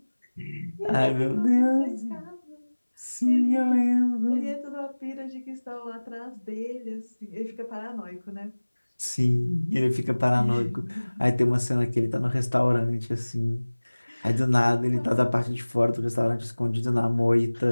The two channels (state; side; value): inverted; both; correlation -1.00